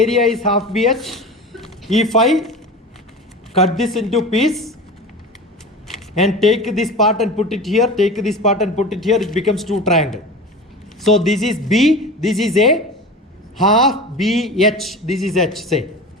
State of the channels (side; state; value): both; normal; correlation 0.32